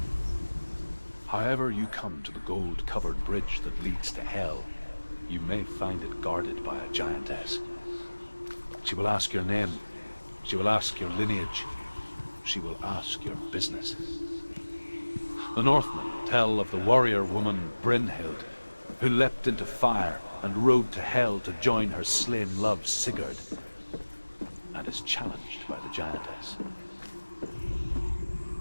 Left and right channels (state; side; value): inverted; both; correlation -1.00